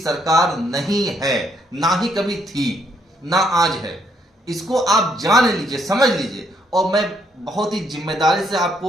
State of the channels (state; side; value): normal; both; correlation 0.72